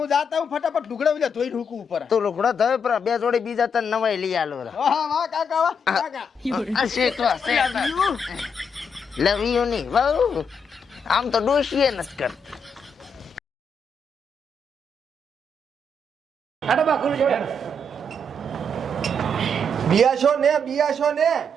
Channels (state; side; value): normal; both; correlation 0.77